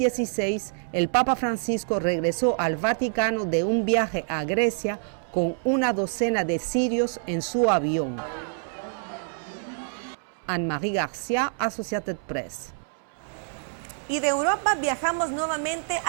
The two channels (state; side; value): silent; left; 61 dB below the other